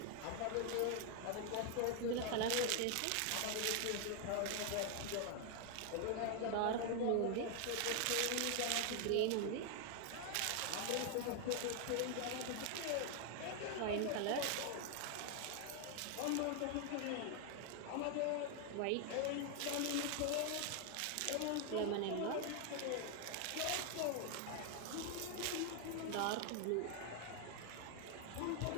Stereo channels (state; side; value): different; both; correlation 0.00